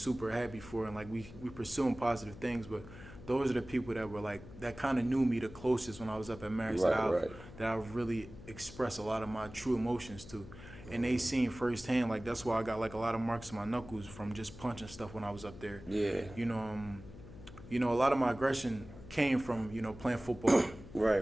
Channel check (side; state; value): left; noise; hum, 16 dB below the sound